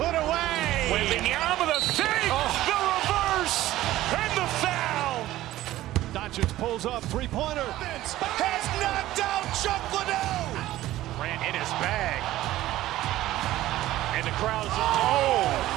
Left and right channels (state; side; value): quieter; left; 15.2 dB